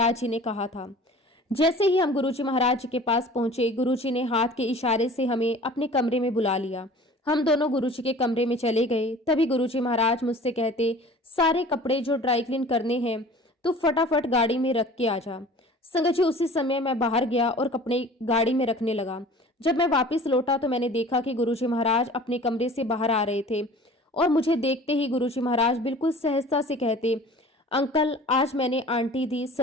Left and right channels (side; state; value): both; normal; correlation 0.44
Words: जी ने कहा था। जैसे ही हम गुरुजी महाराज जी के पास पहुंचे, गुरुजी ने हाथ के इशारे से हमें अपने कमरे में बुला लिया। हम दोनों गुरुजी के कमरे में चले गए। तभी गुरुजी महाराज मुझसे कहते, सारे कपड़े जो ड्राई क्लीन करने हैं तो फटाफट गाड़ी में रख के आ जा। संगत जी, उसी समय मैं बाहर गया और कपड़े गाड़ी में रखने लगा। जब मैं वापस लौटा तो मैंने देखा कि गुरुजी महाराज अपने कमरे से बाहर आ रहे थे और मुझे देखते ही गुरुजी महाराज बिल्कुल सहजता से कहते, अंकल आज मैंने आंटी दी